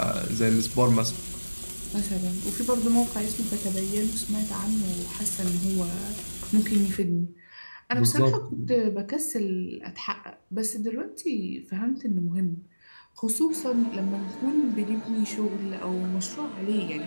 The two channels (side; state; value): both; inverted; correlation -1.00